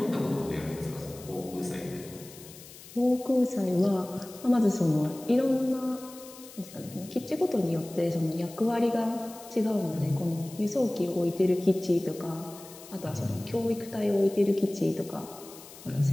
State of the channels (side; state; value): left; noise; hiss, 18 dB below the sound